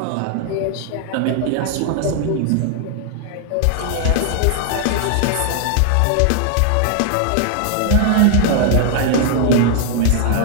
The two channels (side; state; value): both; different; correlation 0.00